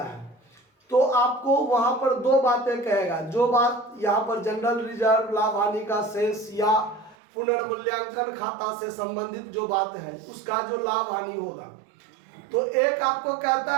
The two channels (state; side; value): drops out; left; at 7.2 s